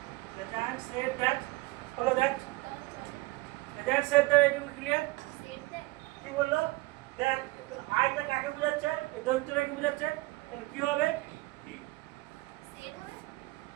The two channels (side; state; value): left; quieter; 21.7 dB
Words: the giant said that, follow that, the giant said that, it will clear, set দেয় কি বললো, that আইটা কাকে বোঝাচ্ছে, এই দৈত্যটাকে বোঝাচ্ছে, তাহলে কি হবে, সেট হবে